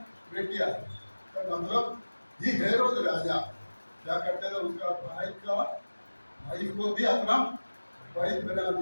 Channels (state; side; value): inverted; both; correlation -1.00